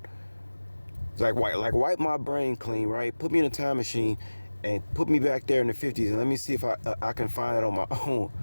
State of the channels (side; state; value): both; inverted; correlation -1.00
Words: It's like wipe my brain clean, right? Put me in a time machine and put me back there in the 50s, and let me see if I can find it on my own